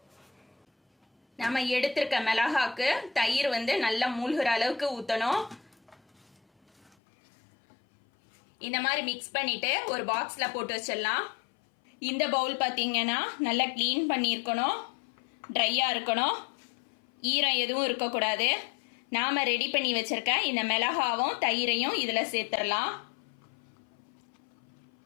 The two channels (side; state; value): right; drops out; at 7.0 s